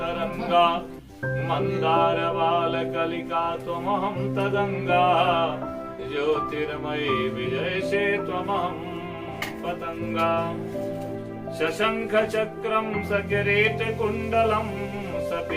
मन्दारबालकलिका त्वमहं तदङ्गा ज्योतिर्मयी विजयसे त्वमहं पतङ्गा शशङ्खचक्रं सकिरीटकुण्डलं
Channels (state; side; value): identical; both; correlation 1.00